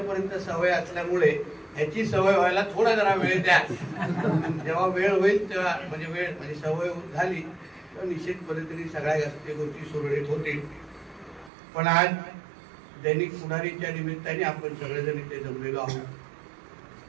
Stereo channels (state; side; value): drops out; left; at 11.5 s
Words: सवय असल्यामुळे ह्याची सवय व्हायला थोडा जरा वेळ द्या। जेव्हा वेळ होईल तेव्हा म्हणजे सवय झाली तर निश्चित पद्धतीने सगळ्या गोष्टी सुरळीत होतील। पण आज दैनिक पुढारीच्या निमित्ताने आपण सगळेजण इथे जमलेलो